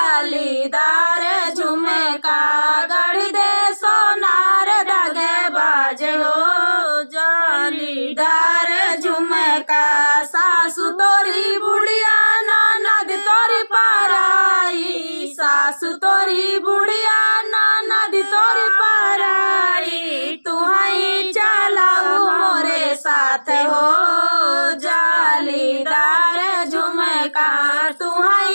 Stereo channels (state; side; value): inverted; both; correlation -1.00